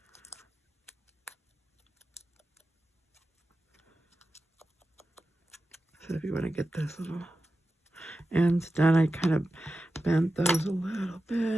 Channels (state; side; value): normal; both; correlation 0.92